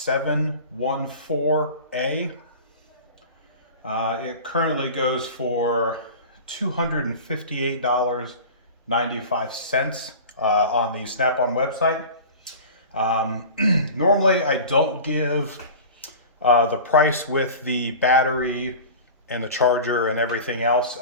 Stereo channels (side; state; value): both; inverted; correlation -0.36